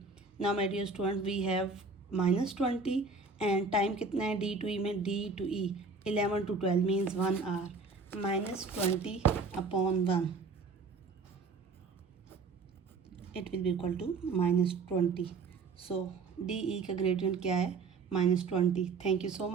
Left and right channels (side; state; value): left; quieter; 4.4 dB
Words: Now my dear student we have -20 and time कितना है D to E में, D to E 11 to 12 means 1 hour. -20 upon 1 it will be equal to -20. So DE का gradient क्या है, -20. Thank you so